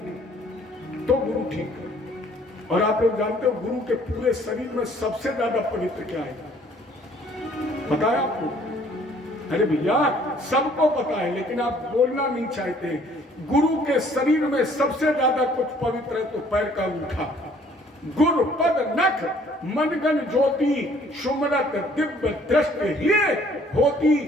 तो गुरु ठीक है। और आप लोग जानते हो गुरु के पूरे शरीर में सबसे ज्यादा पवित्र क्या है? बताया आपको? अरे भैया सबको पता है, लेकिन आप बोलना नहीं चाहते। गुरु के शरीर में सबसे ज्यादा कुछ पवित्र है तो पैर का अंगूठा। गुरु पद नख मनगन ज्योति सुमरत दिव्य दृष्टि ये होती।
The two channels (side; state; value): both; normal; correlation 0.59